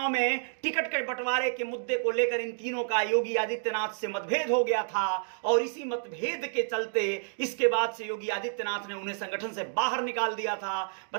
में टिकट के बंटवारे के मुद्दे को लेकर इन तीनों का योगी आदित्यनाथ से मतभेद हो गया था और इसी मतभेद के चलते इसके बाद से योगी आदित्यनाथ ने उन्हें संगठन से बाहर निकाल दिया था।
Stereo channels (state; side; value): silent; left; digital silence